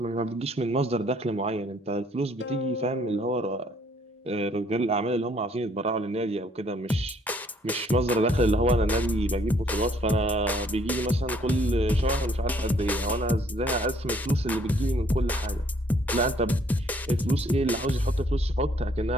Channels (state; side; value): normal; both; correlation 0.64